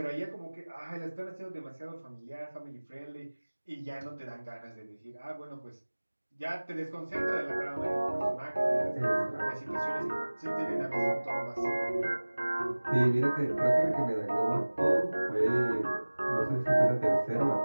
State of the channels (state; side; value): inverted; both; correlation -1.00